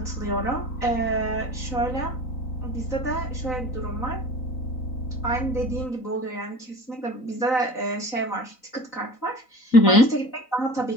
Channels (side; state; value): right; late; 3.9 ms